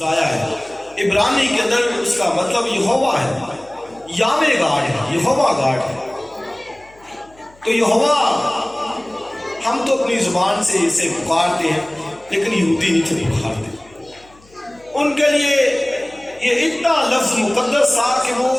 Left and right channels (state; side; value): noise; left; hum, 28 dB below the sound